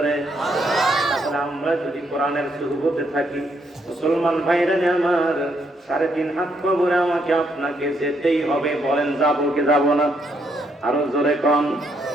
তাহলে আমরা যদি কোরআনের সুহবতে থাকি, মুসলমান ভাইরা আমার, 3.5 হাত কবরে আমাকে আপনাকে যেতেই হবে। বলেন যাবো কি যাবো না? আরো জোরে কন।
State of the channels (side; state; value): both; normal; correlation 0.75